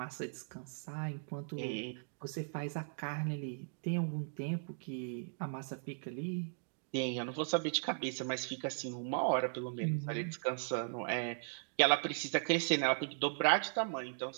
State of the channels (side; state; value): left; silent; digital silence